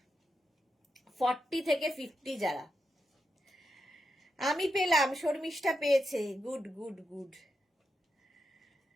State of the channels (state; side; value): normal; both; correlation 0.85